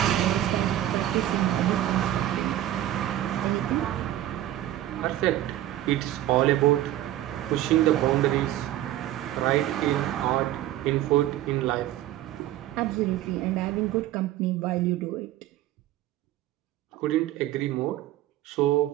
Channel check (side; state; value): left; quieter; 13.7 dB